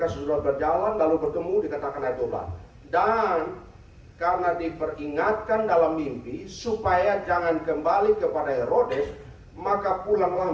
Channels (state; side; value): identical; both; correlation 1.00